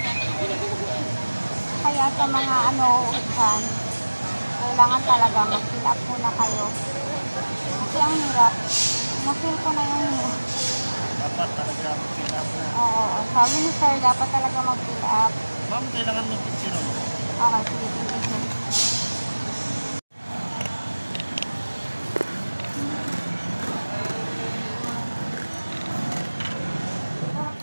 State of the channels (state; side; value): inverted; both; correlation -1.00